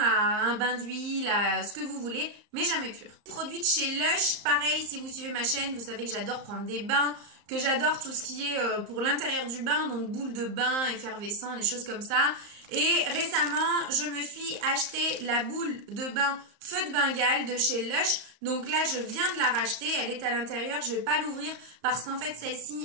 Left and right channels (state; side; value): late; left; 34 ms